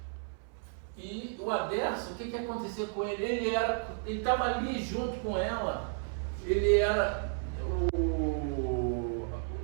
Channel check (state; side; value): silent; left; 56 dB below the other